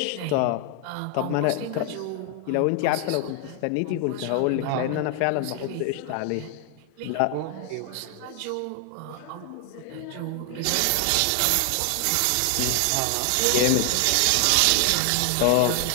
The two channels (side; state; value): both; different; correlation 0.00